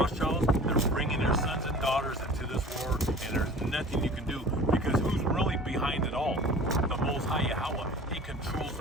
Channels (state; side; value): normal; both; correlation 0.43